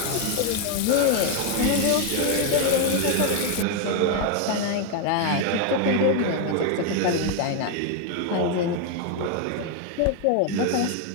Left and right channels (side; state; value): both; different; correlation 0.01